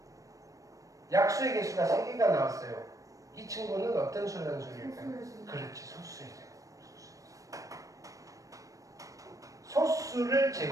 약수의 개수가 3개가 나왔어요. 이 친구는 어떤 수라는 소리일까요? 소수의 제곱. 그렇지, 소수의 제곱. 소수를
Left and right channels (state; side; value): late; left; 0.16 ms